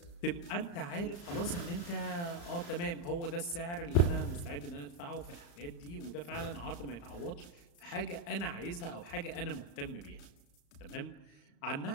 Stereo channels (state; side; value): late; right; 35 ms